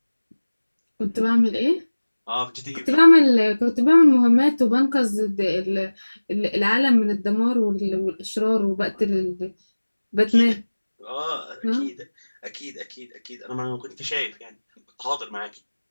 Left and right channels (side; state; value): both; inverted; correlation -1.00